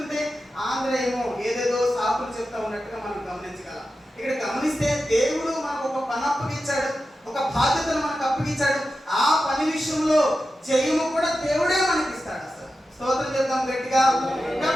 ఆంధ్రేయమో ఏదేదో సాకులు చెప్తా ఉన్నట్టుగా మనం గమనించగలం. ఇక్కడ గమనిస్తే దేవుడు మనకు ఒక పని అప్పగించాడు, ఒక బాధ్యతను మనకు అప్పగించాడు. ఆ పని విషయంలో జయము కూడా దేవుడే మనకి ఇస్తాడు. అసలు స్తోత్రం చెప్తాం గట్టిగా.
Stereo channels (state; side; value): normal; both; correlation 0.92